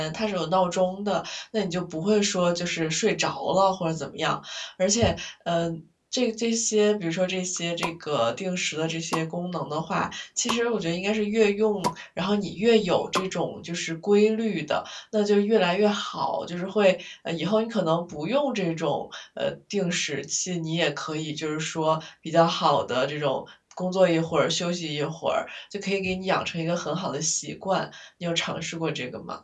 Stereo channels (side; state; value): both; identical; correlation 1.00